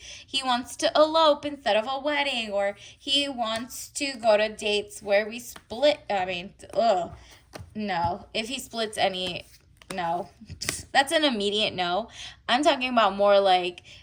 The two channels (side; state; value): both; identical; correlation 1.00